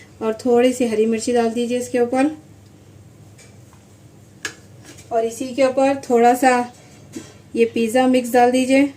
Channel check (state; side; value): identical; both; correlation 1.00